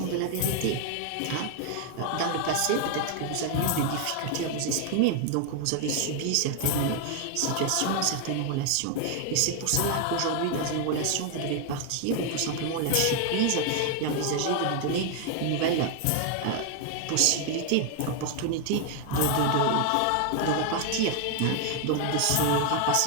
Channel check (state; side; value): different; both; correlation 0.00